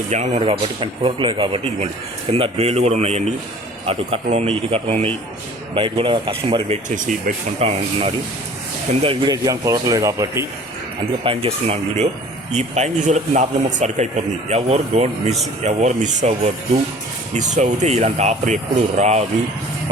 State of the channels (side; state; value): both; normal; correlation 0.48